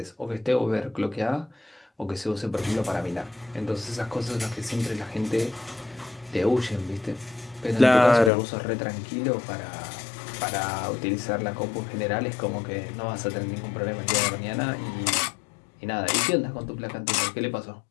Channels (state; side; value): drops out; right; at 8.3 s